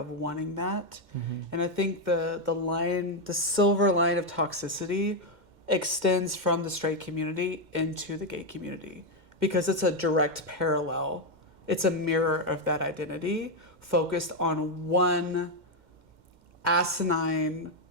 wanting that. And I think the silver line of toxicity extends from the straight community into the gay community because it's a direct parallel. It's a mirror of that identity focused on one asinine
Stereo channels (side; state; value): left; late; 2.1 ms